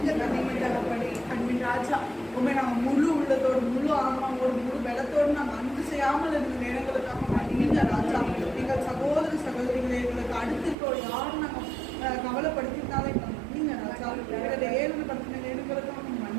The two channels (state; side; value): drops out; left; at 10.8 s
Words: தகப்பனே. அன்பின் ராஜா, உண்மை நாங்கள் முழு உள்ளத்தோடு முழு ஆன்மாவோடு முழு பலத்தோடு நாங்கள் அன்பு செய்யாமல் இருந்த நேரங்களுக்காக மன்னிங்க ராஜா. எங்கள் சகோதர சகோதரிகளை எங்களுக்கு அடுத்து யாரும் நாங்கள் கவலைப்படுத்தினாலும் எங்களை மன்னிங்க ராஜா. எங்களை ஏழுப்படுத்தின நேரங்களுக்காக